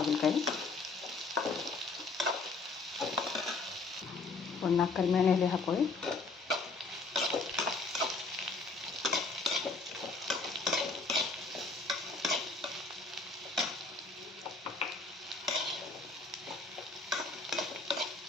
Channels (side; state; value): right; quieter; 3.8 dB